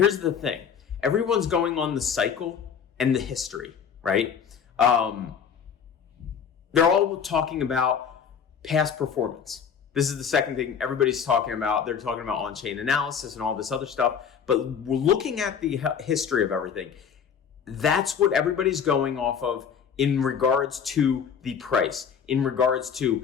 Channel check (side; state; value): right; quieter; 7.3 dB